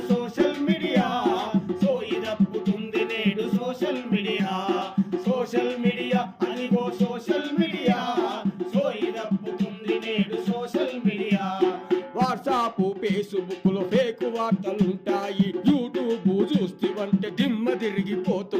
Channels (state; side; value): identical; both; correlation 1.00